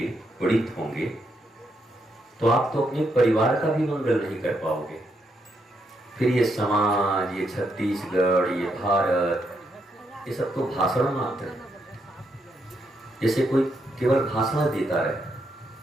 पीड़ित होंगे, तो आप तो अपने परिवार का भी मंगल नहीं कर पाओगे। फिर ये समाज, ये छत्तीसगढ़, ये भारत, ये सब तो भाषण मात्र है। जैसे कोई केवल भाषण देता रहे,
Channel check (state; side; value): normal; both; correlation 0.78